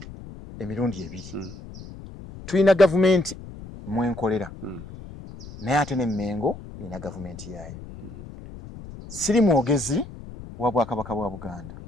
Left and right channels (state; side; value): noise; left; rumble, 14 dB below the sound